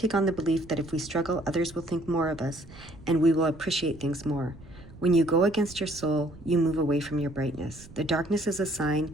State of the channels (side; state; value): right; noise; rumble, 20 dB below the sound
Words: on the belief that if we struggle, others will think more of us, and we will appreciate things more. When you go against your soul, you move away from your brightness. The darkness is a